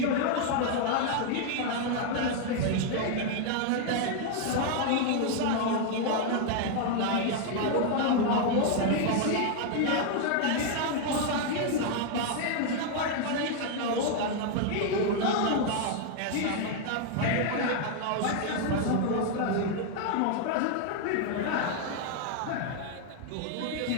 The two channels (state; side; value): different; both; correlation 0.00